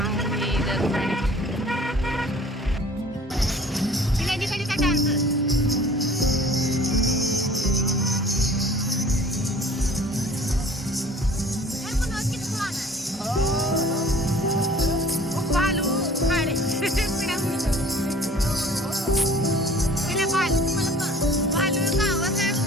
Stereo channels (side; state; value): both; normal; correlation 0.49